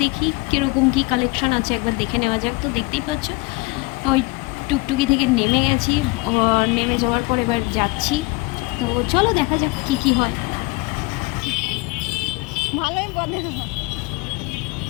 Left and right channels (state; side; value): quieter; right; 25.5 dB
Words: দেখি কীরকম কী কালেকশন আছে একবার দেখে নেওয়া যাক। তো দেখতেই পাচ্ছ ওই টুকটুকি থেকে নেমে গেছি, নেমে যাওয়ার পর এবার যাচ্ছি। তো চলো দেখা যাক কী কী হয়। ভালোই বলে।